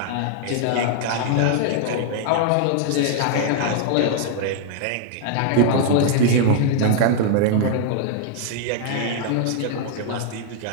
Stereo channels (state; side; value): different; both; correlation 0.00